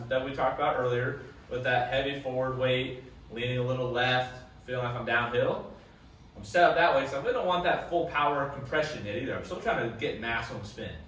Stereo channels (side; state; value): both; identical; correlation 1.00